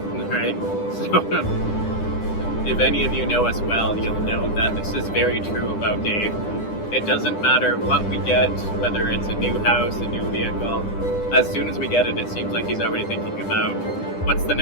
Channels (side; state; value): right; late; 10 ms